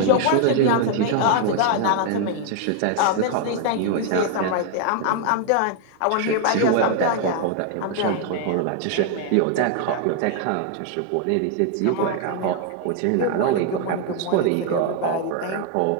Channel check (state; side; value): different; both; correlation 0.00